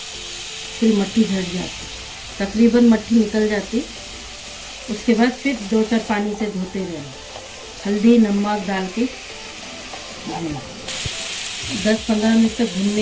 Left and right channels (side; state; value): both; identical; correlation 1.00